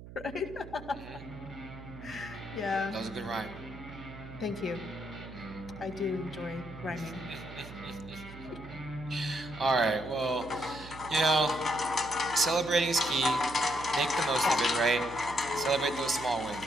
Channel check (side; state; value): right; noise; hum, 15 dB below the sound